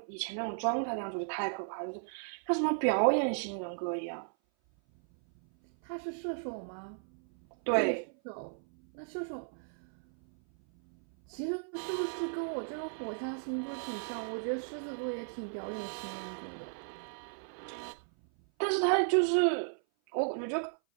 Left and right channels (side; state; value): left; silent; 55 dB below the other